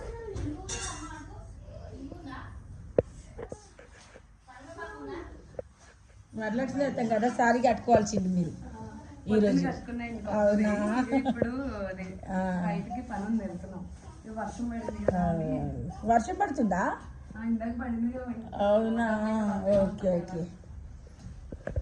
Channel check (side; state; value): both; identical; correlation 1.00